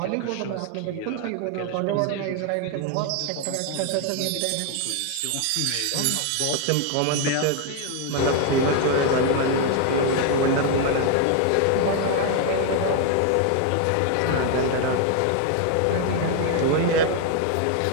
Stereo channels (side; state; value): both; different; correlation 0.01